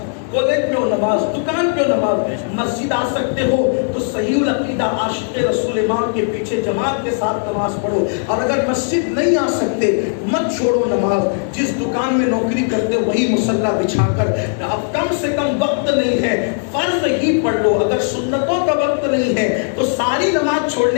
کالج میں ہو نماز، دکان پہ ہو نماز، مسجد آ سکتے ہو تو صحیح العقیدہ عاشق رسول امام کے پیچھے جماعت کے ساتھ نماز پڑھو۔ اور اگر مسجد نہیں آ سکتے مت چھوڑو نماز۔ جس دکان میں نوکری کرتے ہو وہی مصلی بچھا کر، اب کم سے کم وقت نہیں ہے فرض ہی پڑھ لو۔ اگر سنتوں کا وقت نہیں ہے تو ساری نماز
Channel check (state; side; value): silent; right; digital silence